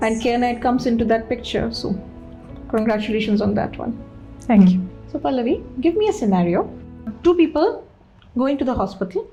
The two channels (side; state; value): both; identical; correlation 1.00